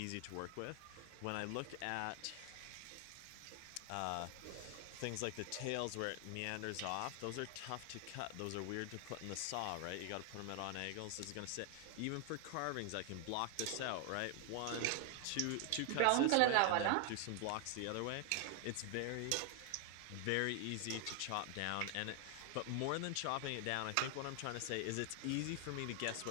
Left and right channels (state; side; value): different; both; correlation 0.00